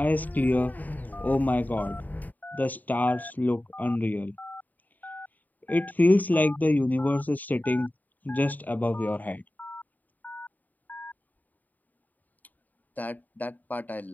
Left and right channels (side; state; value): right; late; 0.083 ms